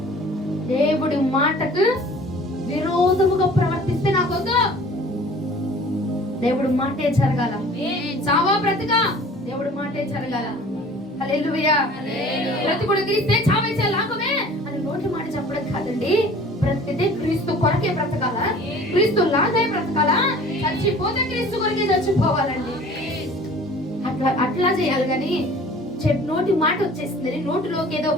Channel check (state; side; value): normal; both; correlation 0.47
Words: దేవుడి మాటకు విరోధముగా ప్రవర్తిస్తే నాకొద్దు. దేవుడి మాటే జరగాల, చావా బ్రతకా దేవుడి మాటే జరగాల. హల్లెలూయా. బ్రతుకుడు క్రీస్తే, చావే లాభమే అని నోటి మాట చెప్పడం కాదండి. బ్రతికితే క్రీస్తు కొరకే బ్రతకాలా, క్రీస్తు లాగే బ్రతకాలా, చచ్చిపోతే క్రీస్తు కొరకే చచ్చిపోవాలండి. అట్లా చేయాలి. కానీ నోటి మాట వచ్చేసింది, నోటిలోకి ఏదో